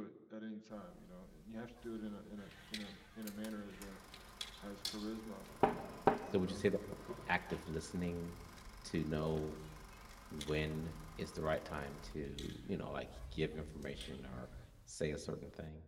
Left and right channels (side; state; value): both; identical; correlation 1.00